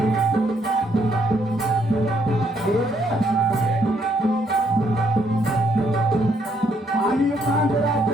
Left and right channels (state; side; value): normal; both; correlation 0.71